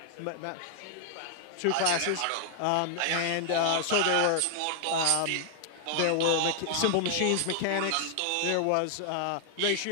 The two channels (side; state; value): both; different; correlation 0.00